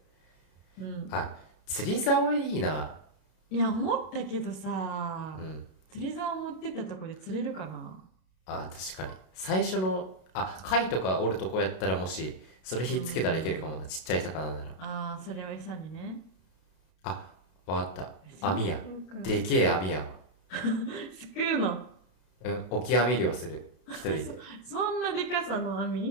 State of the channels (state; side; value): late; right; 32 ms